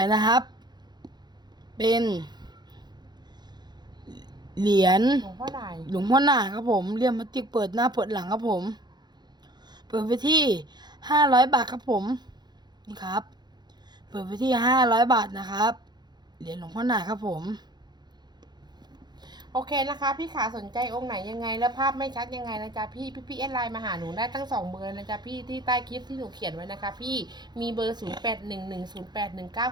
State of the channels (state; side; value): late; left; 0.21 ms